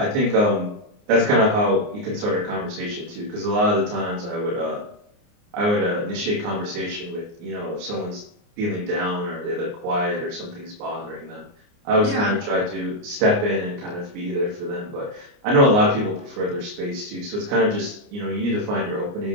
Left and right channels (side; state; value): left; late; 29 ms